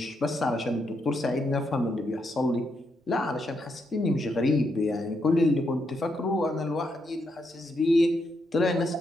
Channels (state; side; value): normal; both; correlation 0.80